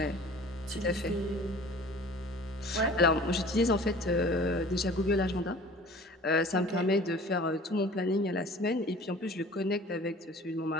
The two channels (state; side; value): normal; both; correlation 0.45